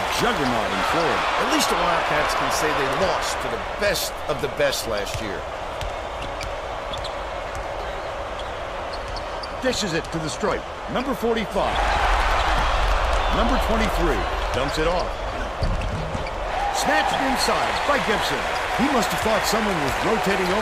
juggernaut in Florida. At least the Wildcats can say they lost to the best of the best last year. Dishes it to the stripe. Number 45. Number 23 dumps it off. Snatched inside by Gibson. He must have thought someone was rotating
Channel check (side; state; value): both; identical; correlation 1.00